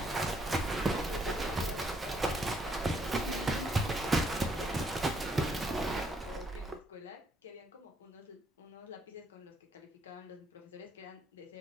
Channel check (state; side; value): normal; both; correlation 0.71